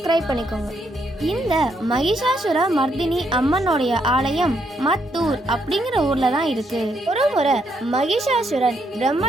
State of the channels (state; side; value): normal; both; correlation 0.76